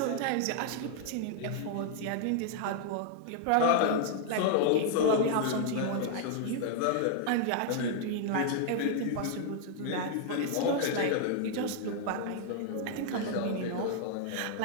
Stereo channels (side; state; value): both; different; correlation -0.01